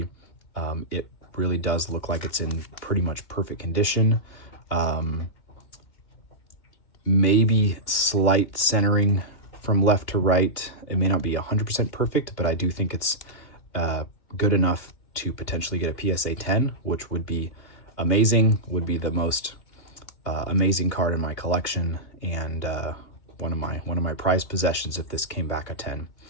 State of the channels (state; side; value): late; right; 2.6 ms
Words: It really does look like it's in pretty much perfect condition. Maybe slight centering from left to right. It may not be 100% perfect, but I do think it's good enough to potentially get a PSA 10, which would be amazing, would be the most amazing card in my collection, and one of my prized possessions if this came back a 10.